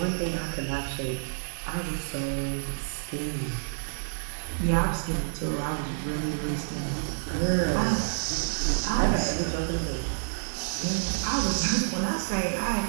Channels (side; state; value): left; silent; digital silence